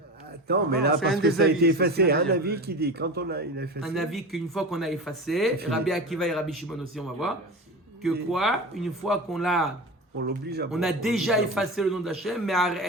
Attends, mais Non, là, c'est parce un que des ça a avis, été c'est ce effacé. qu'il a Un dit. avis qui dit, quand il a effacé. Un avis qu'une fois qu'on a effacé, Rabbi Akiva et Rabbi Shimon aussi, on va voir, que quoi, une fois qu'on l'a, On l'oblige à on a déjà effacé le nom d'Hachem, mais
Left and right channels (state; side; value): normal; both; correlation 0.28